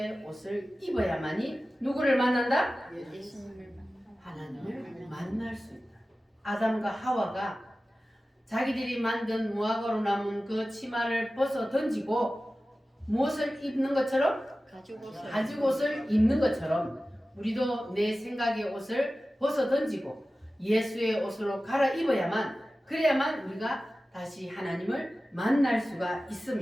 옷을 입어야만이 누구를 만난다? 하나님을 만날 수 있다. 아담과 하와가 자기들이 만든 무화과로 남은 그 치마를 벗어 던지고 무엇을 입는 것처럼? 가죽옷을 입는 것처럼 우리도 내 생각의 옷을 벗어 던지고 예수의 옷으로 갈아입어야만 그래야만 우리가 다시 하나님을 만날 수가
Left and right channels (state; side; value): normal; both; correlation 0.95